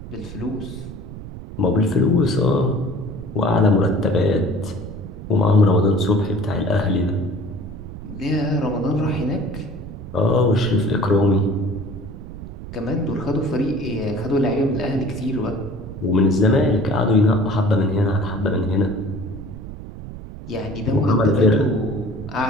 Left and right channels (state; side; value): noise; right; rumble, 12 dB below the sound